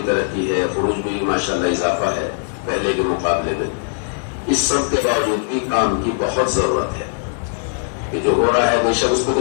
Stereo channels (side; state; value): right; silent; digital silence